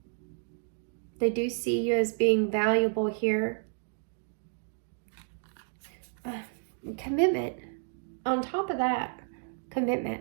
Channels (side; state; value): left; silent; digital silence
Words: They do see you as being valuable here. Commitment. On top of that, commitment.